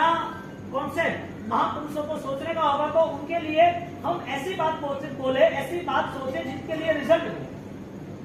कॉन्सेप्ट महापुरुषों को सोचने का होगा तो उनके लिए हम ऐसी बात बोले, ऐसी बात सोचे जिसके लिए रिजल्ट मिले।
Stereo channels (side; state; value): both; identical; correlation 1.00